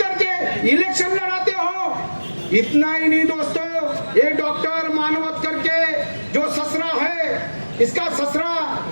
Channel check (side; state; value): both; inverted; correlation -1.00